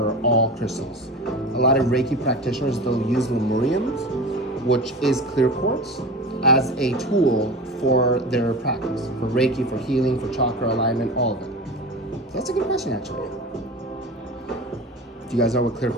all crystals. A lot of Reiki practitioners, they'll use lemuriums, which is clear quartz, as a tool for their practice, for Reiki, for healing, for chakra alignment, all of it. So that's a good question, actually. Do you guys know what clear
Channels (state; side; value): normal; both; correlation 0.31